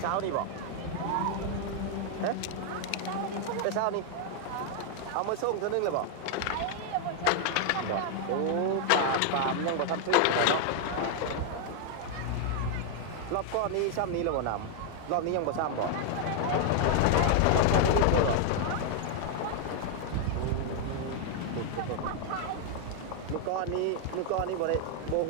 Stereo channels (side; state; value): both; different; correlation 0.00